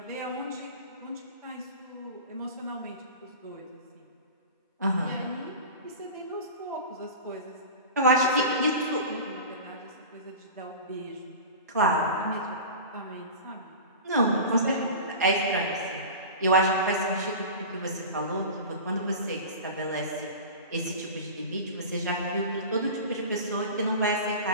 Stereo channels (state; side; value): inverted; both; correlation -0.33